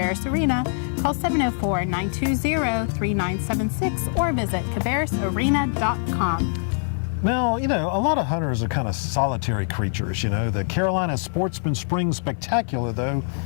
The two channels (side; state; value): right; silent; 63 dB below the other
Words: Arena, call 704-920-3976 or visit cabarrusarena.com. Now, a lot of hunters are kind of solitary creatures. The Carolina Sportsman Spring Spectacular, though,